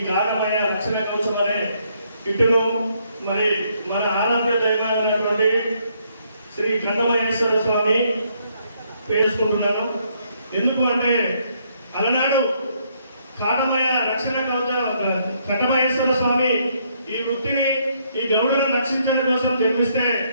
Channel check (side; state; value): both; inverted; correlation -0.71